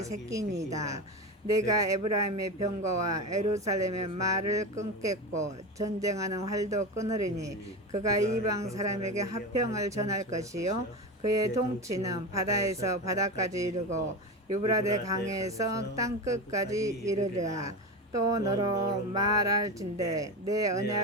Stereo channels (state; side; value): normal; both; correlation 0.22